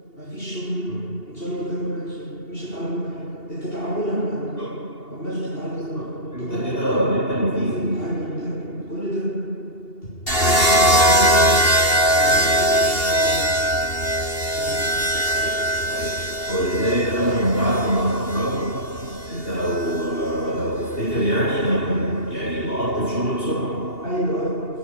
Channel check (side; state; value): right; late; 2.8 ms